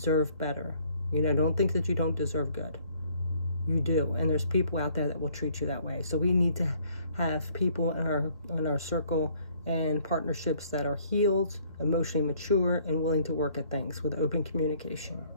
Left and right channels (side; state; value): both; inverted; correlation -0.61